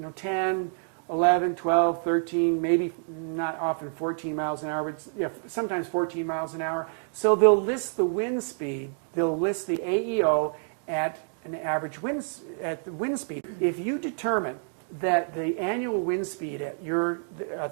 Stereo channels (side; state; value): left; silent; 60 dB below the other